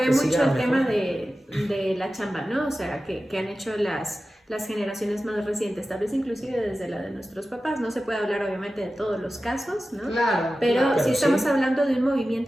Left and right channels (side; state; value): both; normal; correlation 0.94